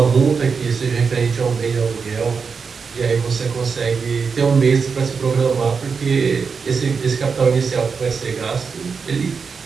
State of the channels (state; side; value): quieter; left; 5.5 dB